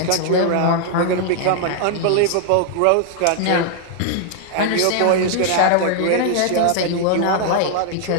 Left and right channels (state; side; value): different; both; correlation 0.00